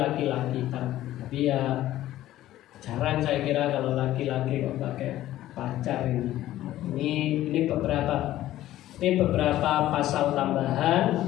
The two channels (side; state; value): right; quieter; 14.3 dB